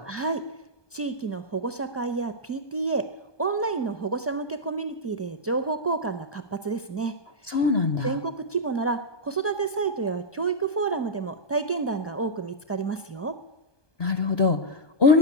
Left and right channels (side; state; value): right; late; 1.2 ms